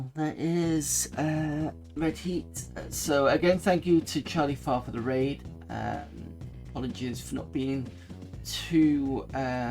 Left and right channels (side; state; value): both; identical; correlation 1.00